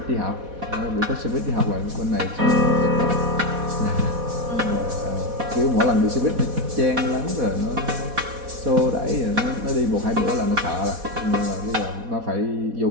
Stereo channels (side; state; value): left; late; 4.1 ms